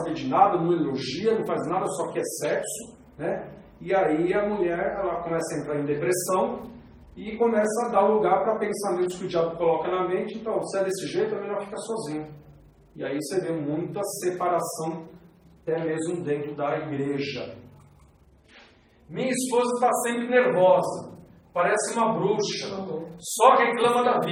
de nada, não elogia, não faz nada, só quer sexo, né, e aí a mulher ela começa a entrar em depressão e começa a dar lugar para pensamentos que o diabo coloca na mente. Então, se é desse jeito, é melhor ficar sozinho. E aí você vê muita separação, até mesmo dentro da igreja. Minha esposa está sempre nervosa. Parece uma bruxa, só reclama da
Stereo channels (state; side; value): identical; both; correlation 1.00